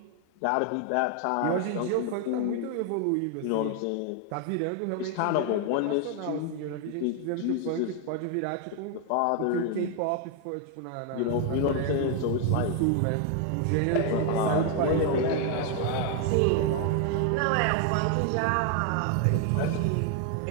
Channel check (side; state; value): both; different; correlation 0.00